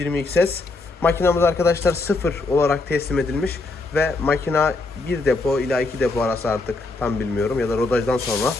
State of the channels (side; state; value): right; quieter; 3.3 dB